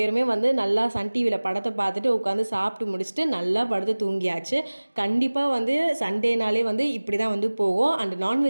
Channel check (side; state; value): both; inverted; correlation -1.00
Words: வந்து நல்லா சன் டிவியில் படத்தை பார்த்துட்டு உட்காந்து சாப்பிட்டு முடிச்சுட்டு நல்லா படுத்து தூங்கியாச்சு. கண்டிப்பாக வந்து சண்டேனாலே வந்து இப்படி தான் வந்து போகும். அண்ட்